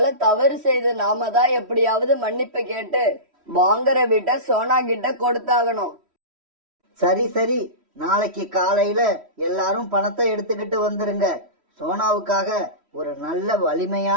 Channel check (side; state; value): left; late; 3.1 ms